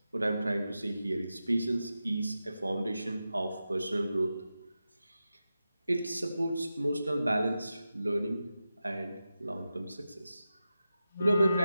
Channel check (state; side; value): inverted; both; correlation -0.92